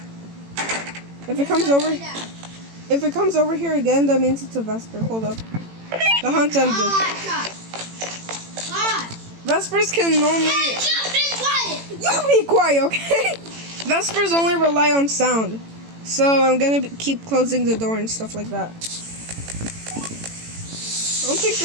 If it comes over here again, that means it's a Vesper. Hold up. The hunt ended. Vespers can only... You be quiet, okay? Vespers only rely on sound. So I'm gonna keep closing the door and stuff like that. I don't think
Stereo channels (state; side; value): late; left; 18 ms